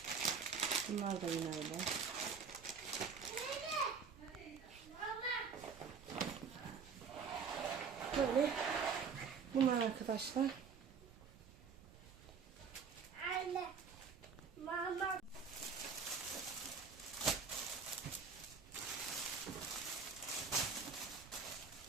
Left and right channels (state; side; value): quieter; left; 5.8 dB